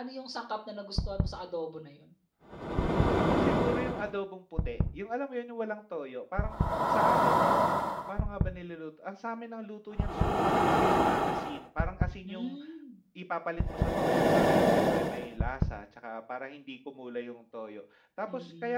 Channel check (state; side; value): identical; both; correlation 1.00